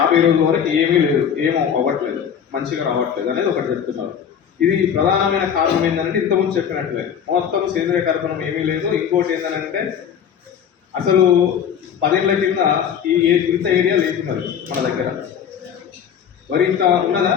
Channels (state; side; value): quieter; right; 8.2 dB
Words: రోజుల వరకు ఏమీ లేదు, ఏమో అవ్వట్లేదు, మంచిగా రావట్లేదు అనేది ఒకటి చెప్తున్నారు. ఇది ప్రధానమైన కారణం ఏంటంటే ఇంతకుముందు చెప్పినట్లే మొత్తం సేంద్రియ కర్బనం ఏమీ లేదు. ఇంకోటి ఏంటంటే అసలు 10 ఏళ్ల కింద ఇంత ఏరియా లేకున్నది మన దగ్గర. మరి ఇంత ఉన్నదా?